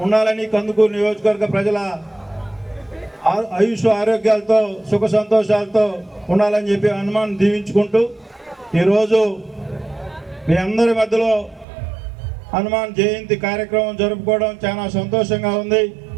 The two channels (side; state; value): left; drops out; at 11.7 s